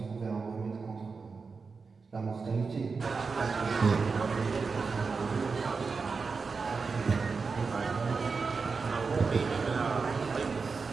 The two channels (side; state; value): left; quieter; 4.8 dB